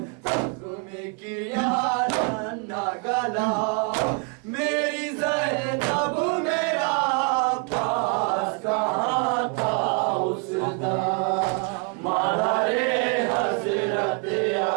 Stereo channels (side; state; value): left; quieter; 33.4 dB